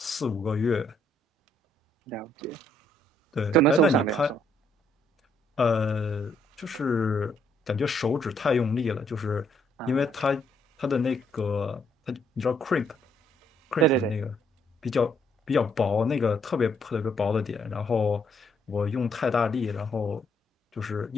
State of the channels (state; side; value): normal; both; correlation 0.70